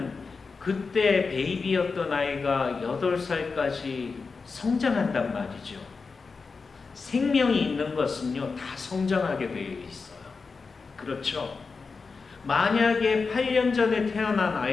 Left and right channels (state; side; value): quieter; right; 4.6 dB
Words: 그때 베이비였던 아이가 8살까지 성장한단 말이죠. 생명이 있는 것은요, 다 성장하게 되어 있어요. 그렇죠? 만약에 8년 전에 태어난